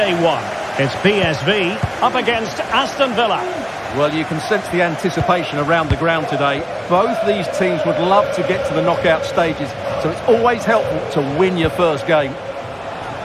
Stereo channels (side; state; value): both; identical; correlation 1.00